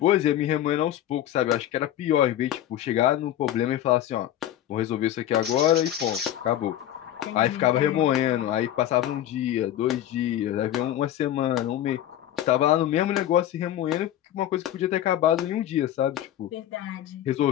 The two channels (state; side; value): quieter; right; 12.1 dB